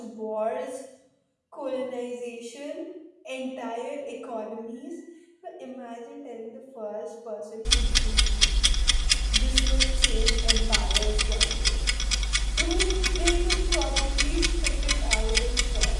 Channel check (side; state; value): both; identical; correlation 1.00